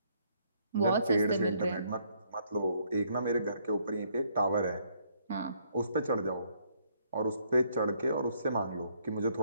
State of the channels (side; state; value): both; inverted; correlation -0.69